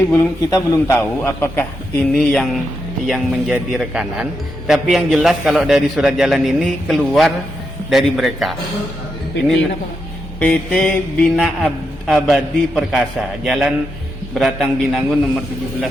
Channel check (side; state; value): both; normal; correlation 0.84